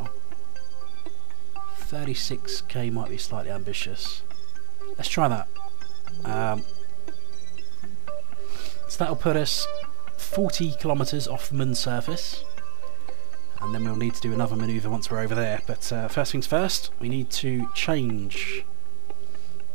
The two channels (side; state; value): left; silent; digital silence